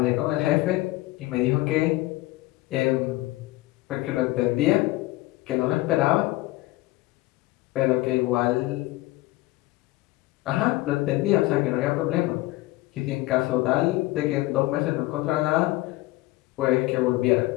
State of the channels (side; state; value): right; quieter; 19.2 dB